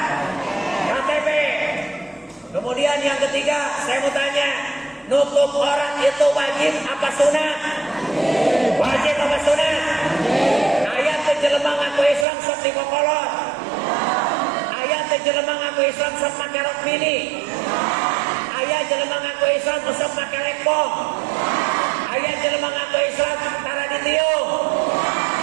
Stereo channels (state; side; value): drops out; left; at 12.2 s